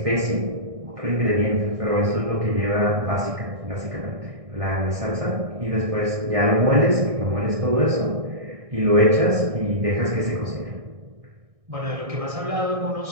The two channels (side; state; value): left; late; 1.6 ms